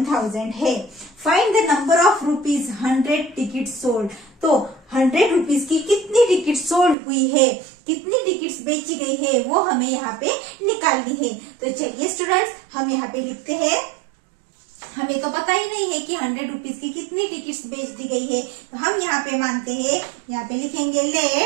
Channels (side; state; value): left; drops out; at 7.0 s